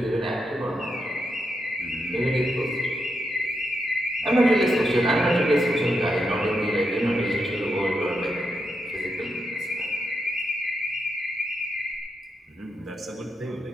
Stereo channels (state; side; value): normal; both; correlation 0.83